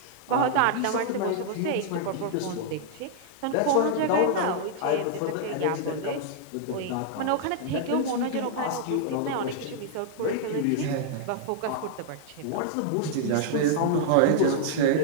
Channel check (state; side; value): different; both; correlation -0.01